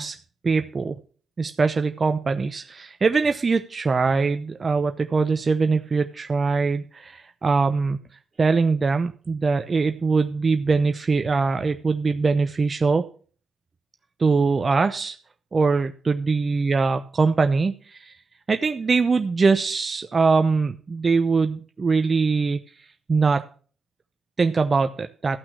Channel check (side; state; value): left; quieter; 4.1 dB